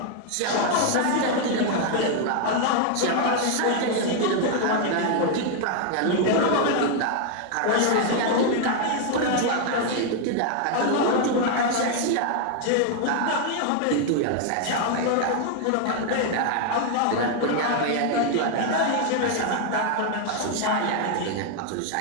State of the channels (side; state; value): both; different; correlation 0.00